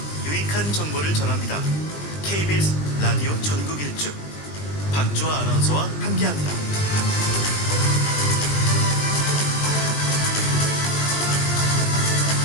유익한 정보를 전합니다. KBS 라디오 전국 일주 박주아 아나운서와 함께합니다.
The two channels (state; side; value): late; right; 20 ms